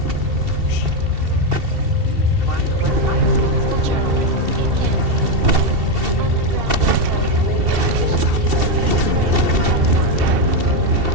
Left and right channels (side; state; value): left; late; 2.7 ms